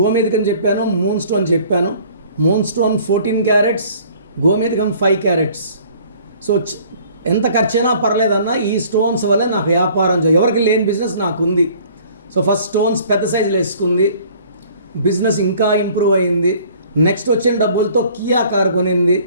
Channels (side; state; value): both; inverted; correlation -0.53